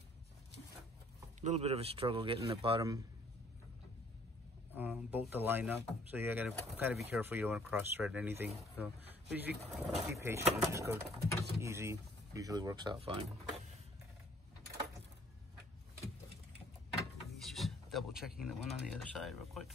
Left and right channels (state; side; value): normal; both; correlation 0.59